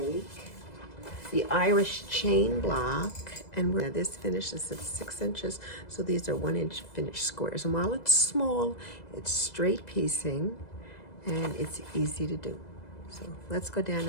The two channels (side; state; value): right; late; 2.0 ms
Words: the Irish chain block, and this finishes at 6 inches, so these are 1-inch finished squares. And while it's small, it's straight piecing, and it's easy to do. So let's go down